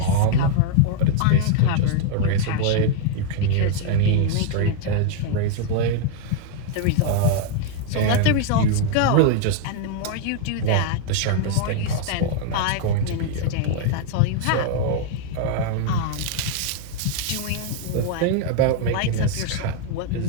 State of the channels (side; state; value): both; different; correlation 0.00